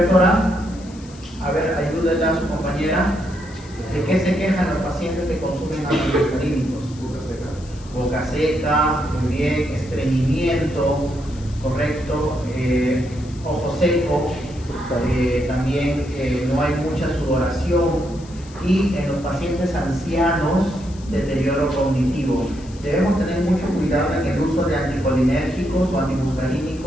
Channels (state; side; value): noise; left; hiss, 22 dB below the sound